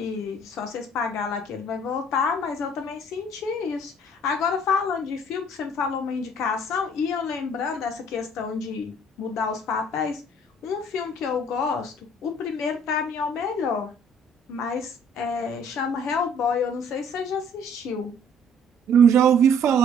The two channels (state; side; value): normal; both; correlation 0.57